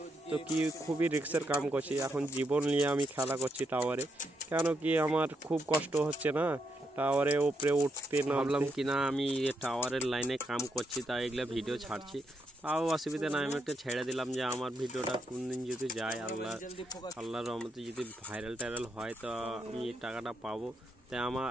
তো কি খুবই রিস্কের কাম করছি, এখন জীবন নিয়ে আমি খেলা করছি টাওয়ারে। কেন কি আমার খুব কষ্ট হচ্ছে না টাওয়ারে উপরে উঠতে, নামলাম কিনা আমি টাওয়ারের লাইনে কাম করছি, তাই এগুলো ভিডিও ছাড়ছি। তাও অসুবিধা নাই, আমি একটা ছেড়ে দিলাম যে আমার ভিডিওটা কোন দিন যদি যায়, আল্লাহর রহমতে যদি ভাইরাল হয়, তো আমি টাকাটা পাবো। তাই আমার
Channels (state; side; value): normal; both; correlation 0.80